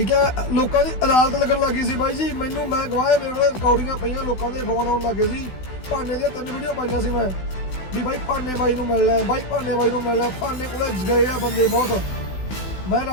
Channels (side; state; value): right; late; 16 ms